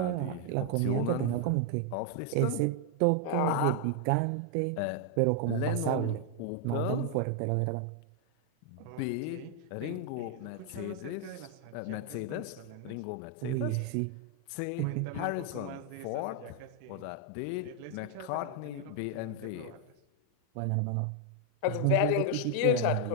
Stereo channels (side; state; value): both; different; correlation 0.00